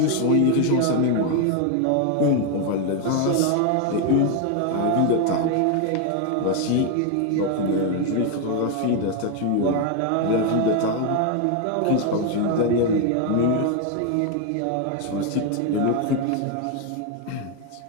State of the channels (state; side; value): different; both; correlation 0.01